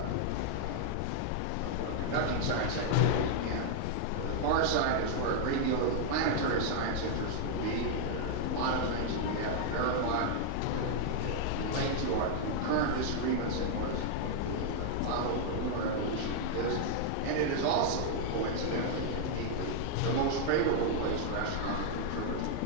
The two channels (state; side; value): different; both; correlation -0.01